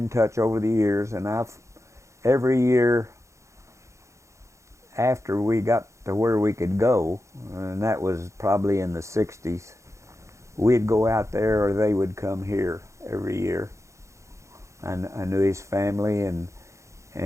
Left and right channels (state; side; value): late; left; 0.14 ms